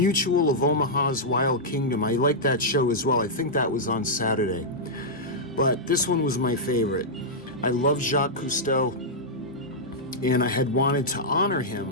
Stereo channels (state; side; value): normal; both; correlation -0.09